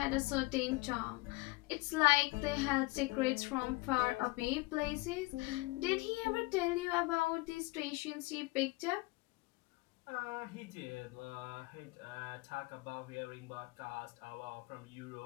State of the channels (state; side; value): quieter; right; 23.8 dB